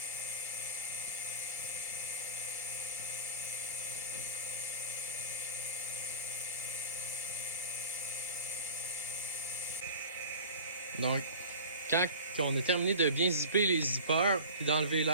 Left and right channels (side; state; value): both; inverted; correlation -0.36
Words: Donc, quand on a terminé de bien zipper les zippers, puis d'enlever